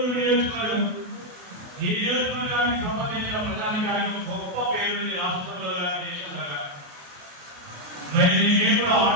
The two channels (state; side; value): late; left; 28 ms